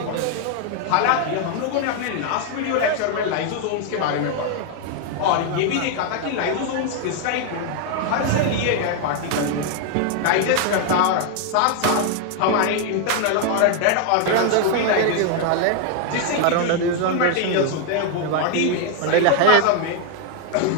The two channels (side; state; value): both; different; correlation 0.00